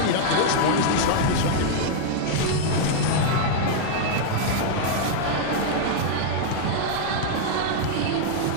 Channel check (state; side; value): different; both; correlation -0.01